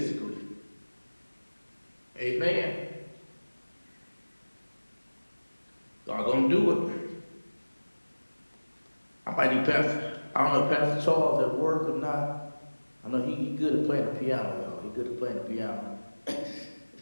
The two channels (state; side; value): inverted; both; correlation -1.00